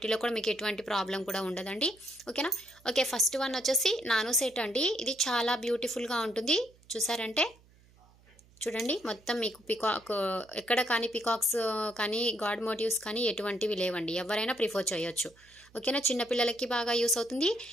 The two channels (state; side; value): noise; right; hum, 28 dB below the sound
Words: కూడా మీకు ఎటువంటి ప్రాబ్లం కూడా ఉండదండి. ఓకేనా? ఓకే, ఫస్ట్ వన్ వచ్చేసి నానో సెట్ అండి. ఇది చాలా బ్యూటిఫుల్గా ఉంటుంది. చూసారంటే చూడండి, మొత్తం మీకు పికాక్ ఎక్కడ కానీ పికాక్స్ కానీ గాడ్ మోటివ్స్ కానీ ఎటువంటివి లేవండి. ఎవరైనా ప్రిఫర్ చేయొచ్చు. ఓకేనా? చిన్నపిల్లలకి బాగా యూస్ అవుతుంది,